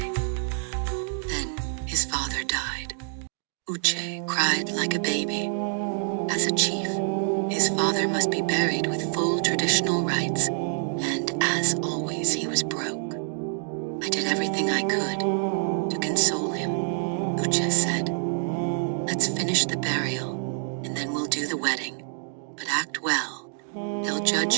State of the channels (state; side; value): silent; left; 60 dB below the other